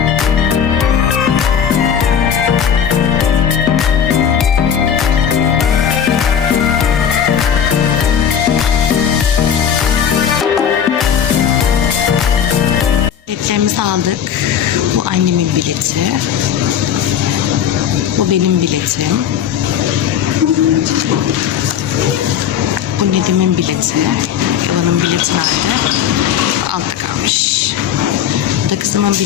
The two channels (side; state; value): right; quieter; 8.4 dB